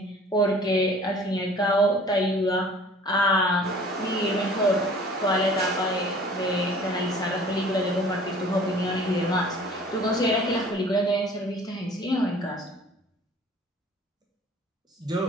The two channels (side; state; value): both; normal; correlation 0.49